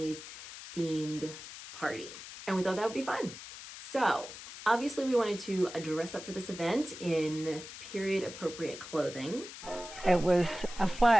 themed party. And we thought that would be fun. So obviously we wanted to dress up for this event in period appropriate clothing. It was a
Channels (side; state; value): left; noise; hiss, 12 dB below the sound